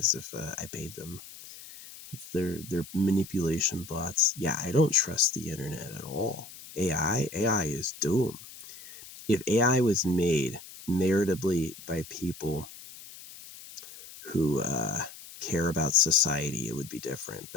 if I paid them. They're manipulation bots. Yeah, I don't trust the internet at all. AI is doom. If AI was made meritably by people who care about society, it would be different.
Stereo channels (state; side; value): noise; left; hiss, 16 dB below the sound